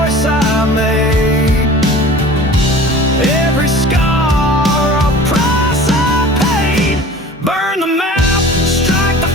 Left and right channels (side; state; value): both; normal; correlation 0.42